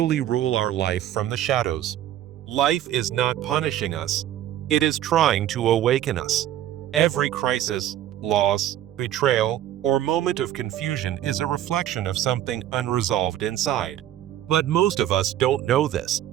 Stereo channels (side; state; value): left; quieter; 12.1 dB